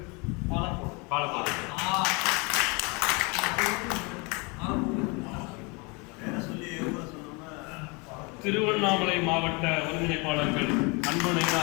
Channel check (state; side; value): quieter; right; 29.5 dB